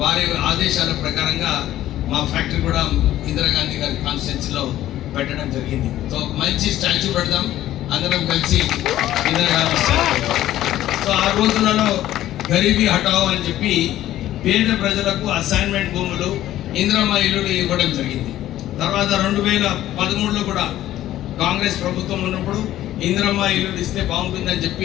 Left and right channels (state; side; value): quieter; right; 13.5 dB